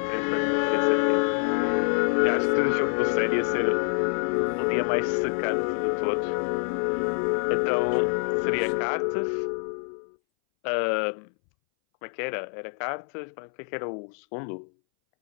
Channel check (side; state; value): right; silent; 61 dB below the other